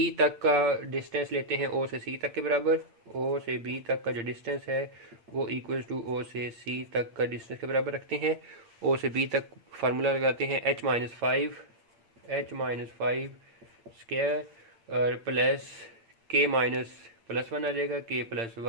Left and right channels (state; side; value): late; left; 8.7 ms